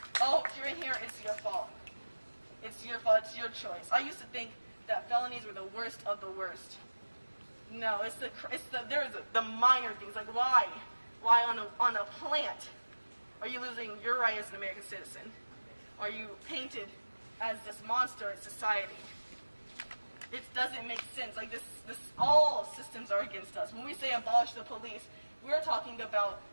oh, if you're in here, it's your fault. It's your fault, it's your choice. I used to think that felonies were the worst of the worst. No, there's the minor things, like why on a plant are you losing your right as an American citizen? Are you painted as this monster in society? It doesn't make sense. Like this, all systems are against us. When we say abolish the police, we're talking about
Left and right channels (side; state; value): both; inverted; correlation -1.00